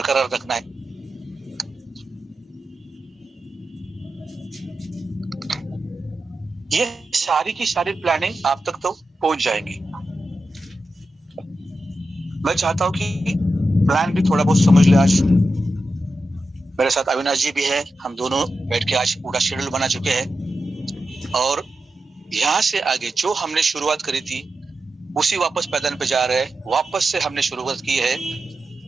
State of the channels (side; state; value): both; normal; correlation 0.90